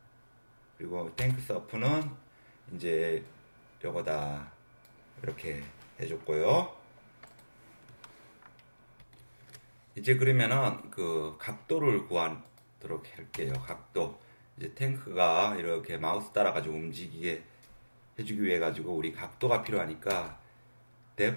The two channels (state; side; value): inverted; both; correlation -1.00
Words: 그리고 탱크 서프는 이제 요거다 이렇게 해줬고요. 이제 그러면은 그 각도를 구하도록 할게요. 각도. 이제 탱크가 이렇게 마우스 따라가지고 움직이게 해주기 위해 가지고 우리 각도가 필요하니까